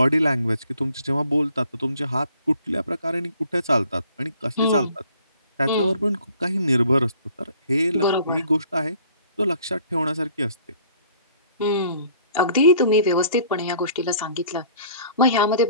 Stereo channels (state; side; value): inverted; both; correlation -0.55